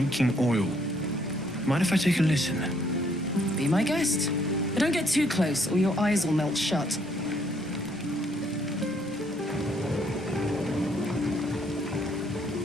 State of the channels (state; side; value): normal; both; correlation 0.68